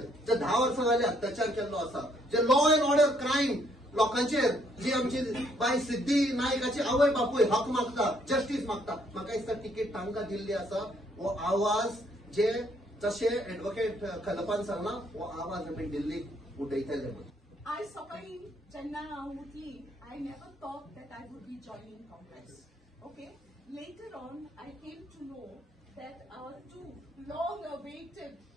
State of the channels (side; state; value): both; normal; correlation 0.68